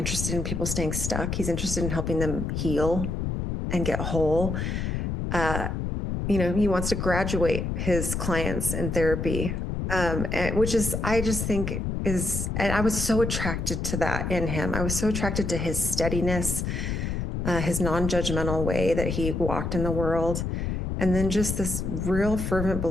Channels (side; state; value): left; noise; rumble, 2 dB below the sound